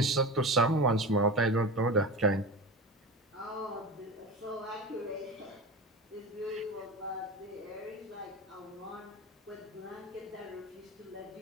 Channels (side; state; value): both; normal; correlation 0.28